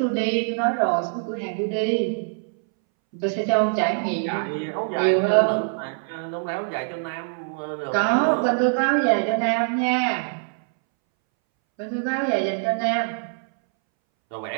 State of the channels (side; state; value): left; silent; 62 dB below the other